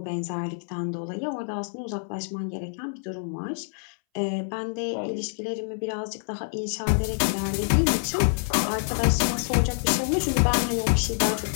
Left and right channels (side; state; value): right; silent; 61 dB below the other